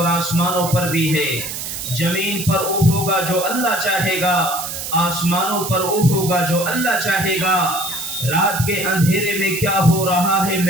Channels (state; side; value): noise; right; hiss, 6 dB below the sound